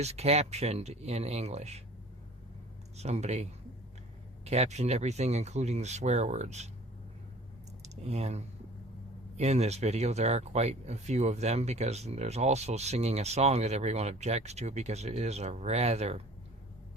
captioned in English. Somebody captioned everything, including the swear words. And in this video, there are quite a few of them, because there's also singing a song that everyone objects to because it is a rather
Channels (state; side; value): normal; both; correlation 0.46